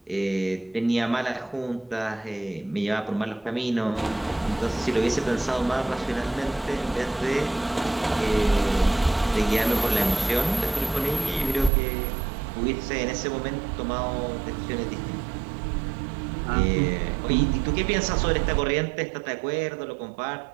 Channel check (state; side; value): drops out; left; at 11.7 s